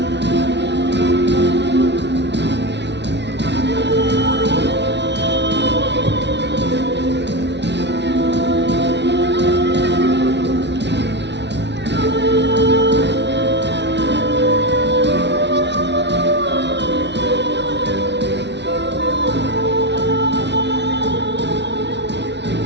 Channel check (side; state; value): left; late; 0.50 ms